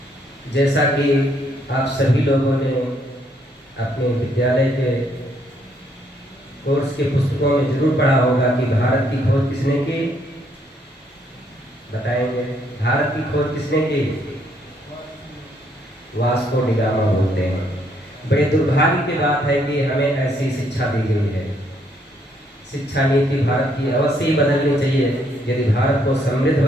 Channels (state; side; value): normal; both; correlation 0.70